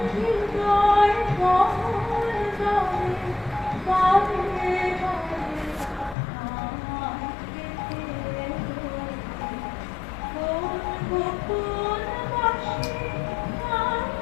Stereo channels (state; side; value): drops out; right; at 6.2 s